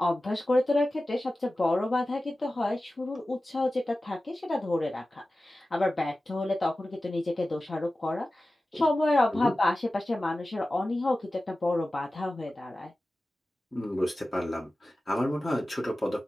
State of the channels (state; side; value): normal; both; correlation 0.95